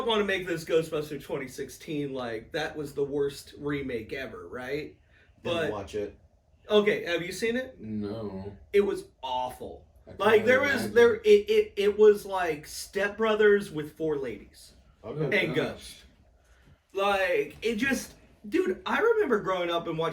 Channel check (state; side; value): identical; both; correlation 1.00